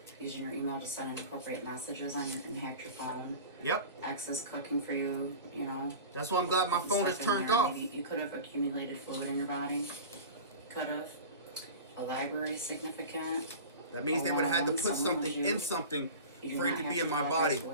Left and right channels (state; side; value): inverted; both; correlation -0.34